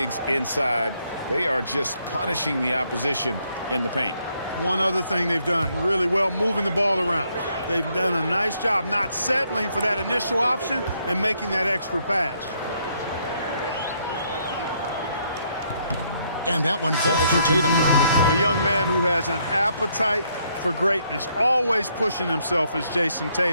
inside. They are just punishing the opposition in the paint. One other thing they've done really well, moving the ball around. They've done a nice job not settling for that initial option and making that extra pass. And that one falls for Tatum. A young man who has an appetite for greatness, always pushing himself, is Jason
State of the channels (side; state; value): both; inverted; correlation -0.71